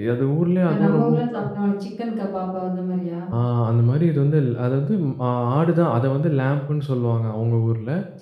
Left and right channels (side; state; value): both; identical; correlation 1.00